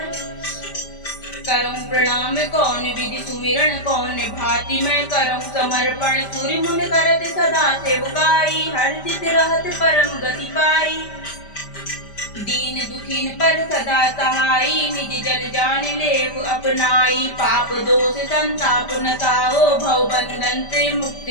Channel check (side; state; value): right; late; 5.1 ms